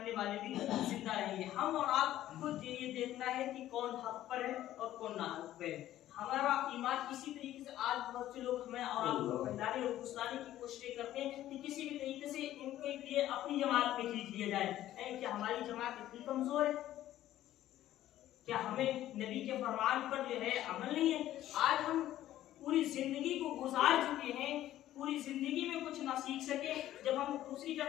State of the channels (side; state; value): right; quieter; 13.4 dB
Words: वाले भी जिंदा रहेंगे। हम और आपको ये देखना है कि कौन हक पर है और कौन ना हक पर है। हमारा ईमान इसी तरीके से आज बहुत से लोग हमें और आपको फैलाने और फुसलाने की कोशिश करते हैं कि किसी भी तरीके से इनको एक लिए अपनी जमात में खींच लिया जाए। क्या हमारी जमात इतनी कमजोर है? क्या हमें नबी के फरमान पर जो है अमल नहीं है? आज हम पूरी जिंदगी को गुजार चुके हैं, पूरी जिंदगी में कुछ ना सीख सके। जब हम दूसरी